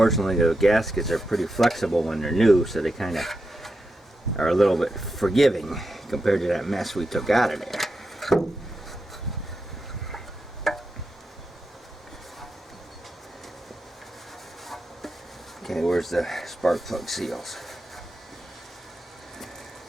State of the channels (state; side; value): normal; both; correlation 0.87